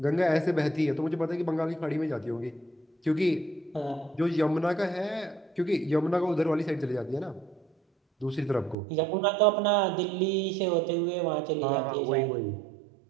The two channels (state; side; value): drops out; left; at 8.8 s